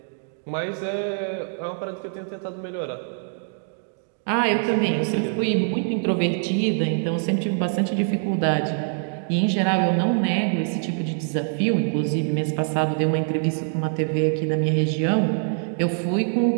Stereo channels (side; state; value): left; silent; digital silence